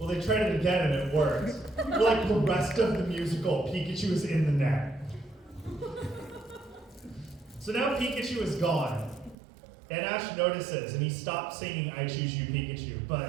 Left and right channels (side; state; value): left; drops out; at 9.3 s